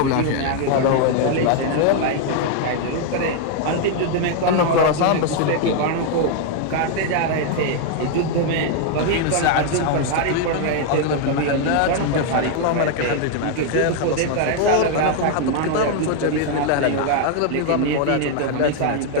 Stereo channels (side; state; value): both; different; correlation 0.00